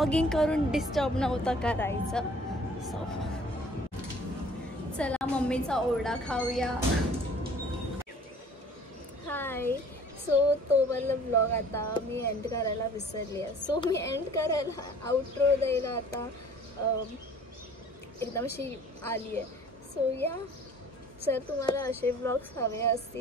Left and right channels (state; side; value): normal; both; correlation 0.51